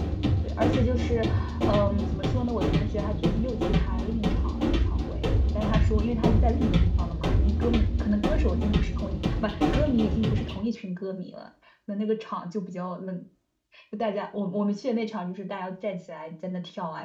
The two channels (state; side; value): identical; both; correlation 1.00